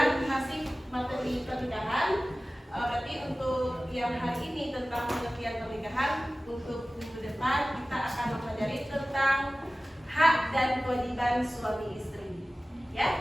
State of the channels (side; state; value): both; normal; correlation 0.97